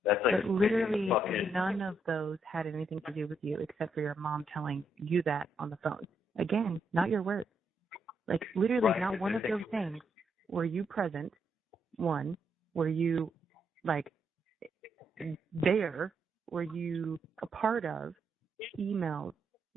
that's like. But literally none of those had anything to do with you except for your mom telling you that on the phone. Again, not your words. Like literally right. Not one of those things. Were you present? One. Were you like there? Were you a part of? Emails?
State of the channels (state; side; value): normal; both; correlation 0.77